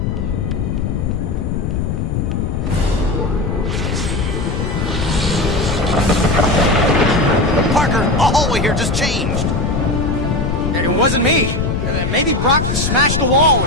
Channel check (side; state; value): left; noise; rumble, 1 dB below the sound